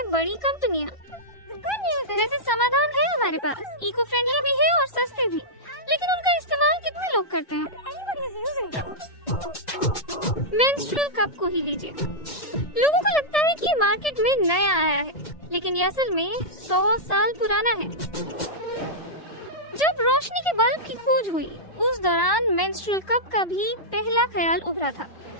बड़ी कंपनियां। वैसे समाधान है हमारे पास, इको फ्रेंडली भी है और सस्ते भी, लेकिन उनका इस्तेमाल कितने लोग करते हैं? मेंस्ट्रुअल कप को ही लीजिए। लोगों को लगता है कि ये मार्केट में नया आया है, लेकिन ये असल में 100 साल पुराना है। जब रोशनी के बल्ब की खोज हुई, उस दौरान मेंस्ट्रुअल कप का भी पहला ख्याल उभरा था।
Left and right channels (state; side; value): late; right; 1.7 ms